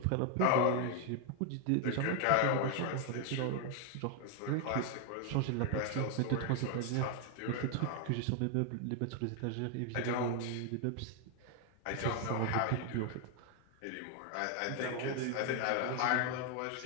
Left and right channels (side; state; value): both; different; correlation 0.00